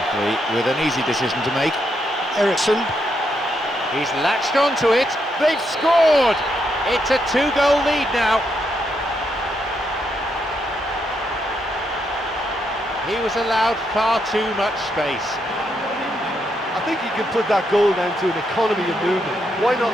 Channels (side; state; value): both; normal; correlation 0.79